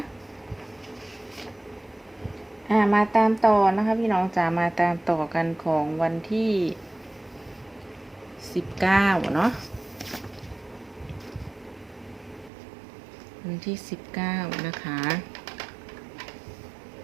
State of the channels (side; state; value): left; drops out; at 12.5 s